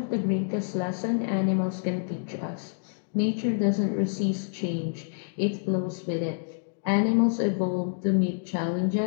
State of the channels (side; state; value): right; silent; digital silence